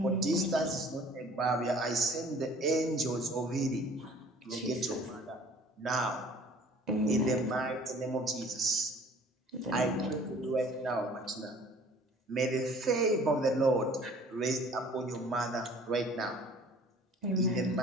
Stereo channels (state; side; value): normal; both; correlation 0.51